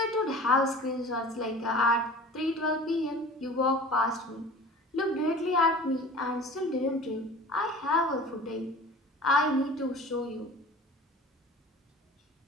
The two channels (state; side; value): normal; both; correlation 0.41